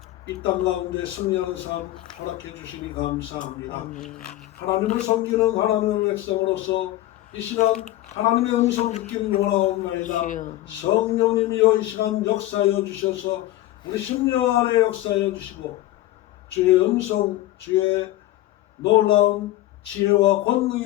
이 땅 가운데 승리하는 삶 허락해 주시니 감사합니다. 아멘. 하나님을 섬기는 하나님의 백성으로서 이 시간 하나님의 음성 듣기를 원하옵나이다. 주여. 성령님이여 이 시간 역사하여 주셔서 우리 심령 안에 역사하여 주시고 주의 음성, 주의 놀라운 지혜와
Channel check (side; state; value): right; quieter; 15.5 dB